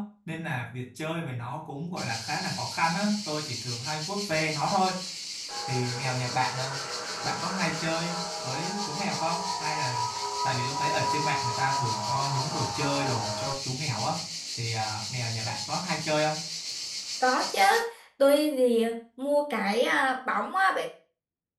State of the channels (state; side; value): identical; both; correlation 1.00